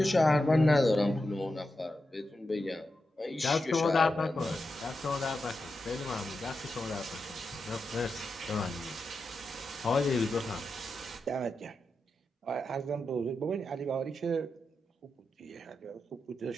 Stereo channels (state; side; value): normal; both; correlation 0.88